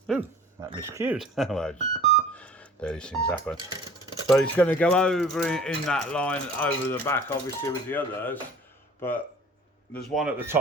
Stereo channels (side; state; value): both; normal; correlation 0.46